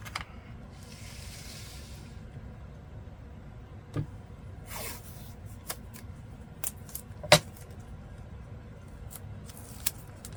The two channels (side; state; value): both; identical; correlation 1.00